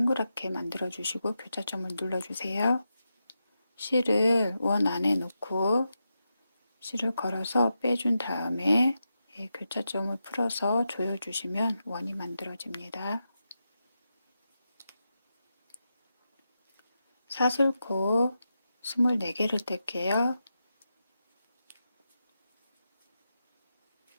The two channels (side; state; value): both; inverted; correlation -0.88